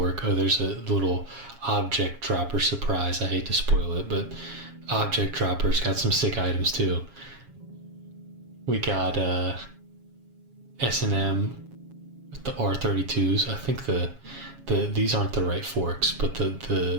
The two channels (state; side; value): late; left; 7.3 ms